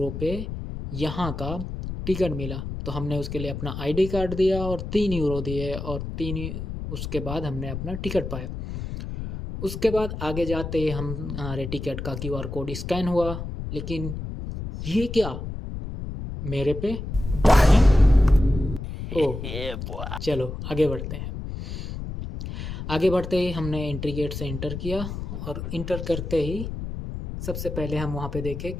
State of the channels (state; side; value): noise; left; rumble, 7 dB below the sound